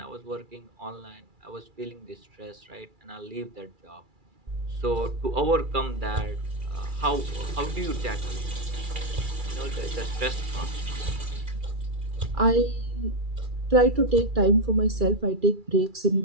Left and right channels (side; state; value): left; late; 2.3 ms